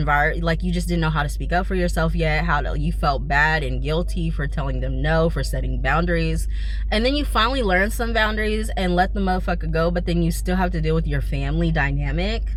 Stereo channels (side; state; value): both; identical; correlation 1.00